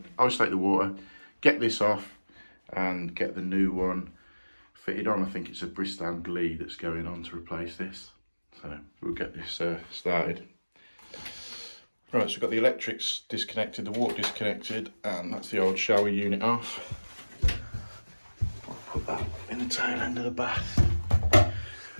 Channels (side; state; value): both; inverted; correlation -1.00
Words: to isolate the water, get this off and get the new one fitted on. I think it's a Bristol Glee that's going on to replace this, so we'll get this started. Right, so we've got the electrics disconnected, the water disconnected, and that's the old shower unit off. I'll put that in the tail end of the bath.